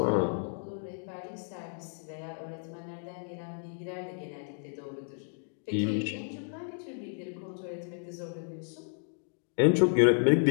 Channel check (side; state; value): right; silent; digital silence